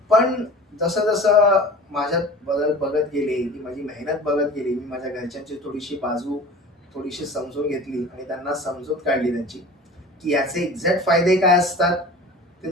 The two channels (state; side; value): normal; both; correlation 0.39